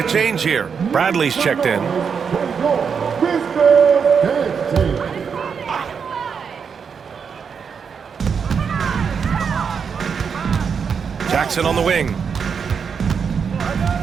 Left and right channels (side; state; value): left; quieter; 6.4 dB